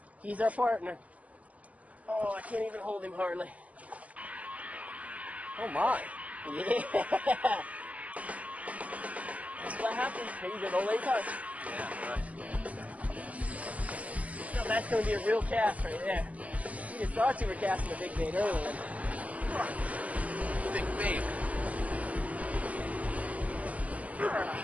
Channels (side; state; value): left; late; 0.073 ms